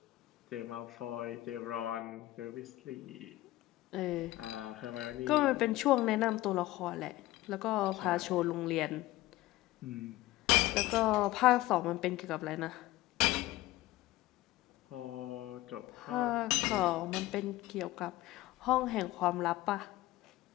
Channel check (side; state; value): right; quieter; 17.4 dB